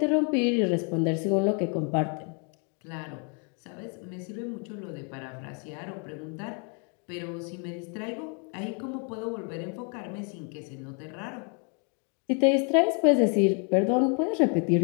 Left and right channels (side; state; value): right; quieter; 38.5 dB